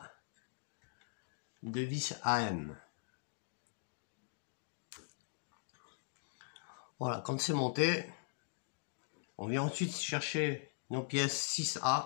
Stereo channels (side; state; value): right; silent; digital silence